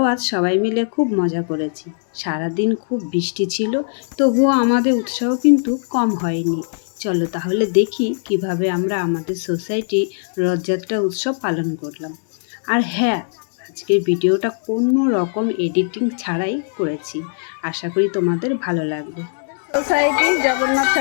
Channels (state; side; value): silent; right; 66 dB below the other